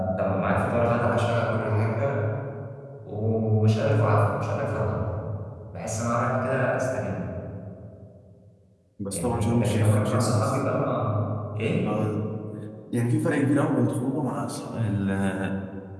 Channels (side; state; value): both; identical; correlation 1.00